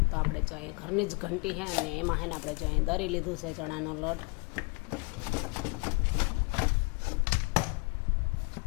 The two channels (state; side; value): quieter; right; 31.9 dB